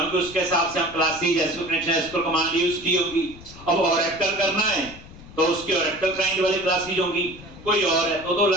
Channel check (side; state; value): left; noise; rumble, 18 dB below the sound